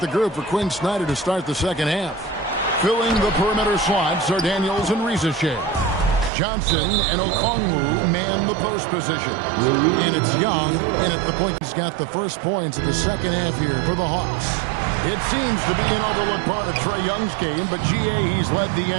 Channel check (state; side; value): drops out; left; at 6.3 s